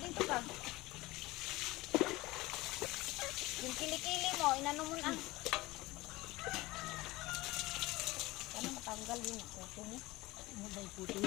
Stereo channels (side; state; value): right; quieter; 20.1 dB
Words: ka. Yung kilikili mo, inano mo na. Paano matanggal yun yung kuto mo? Ano ba yung puto